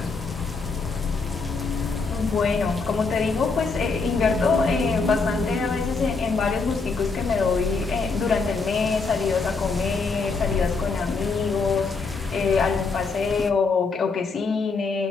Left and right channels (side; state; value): right; quieter; 4.3 dB